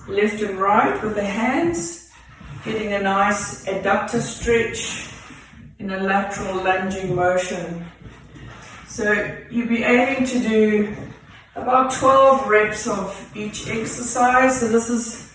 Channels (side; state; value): both; identical; correlation 1.00